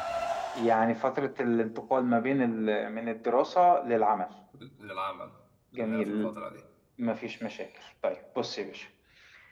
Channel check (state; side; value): identical; both; correlation 1.00